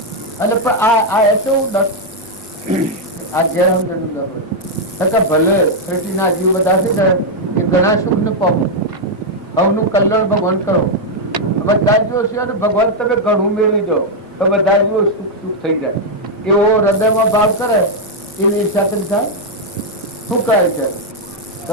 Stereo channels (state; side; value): normal; both; correlation -0.01